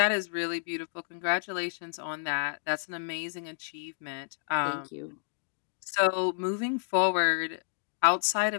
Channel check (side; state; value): right; silent; digital silence